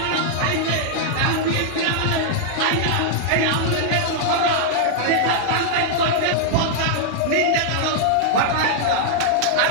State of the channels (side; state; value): both; different; correlation -0.01